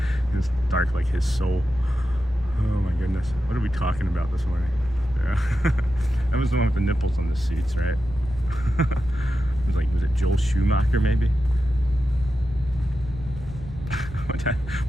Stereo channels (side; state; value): left; noise; rumble, 16 dB below the sound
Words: dark like his soul. Oh my goodness. What are we talking about this morning? That was the one with the nipples on the suits, right? It was it Joel Schumacher, maybe?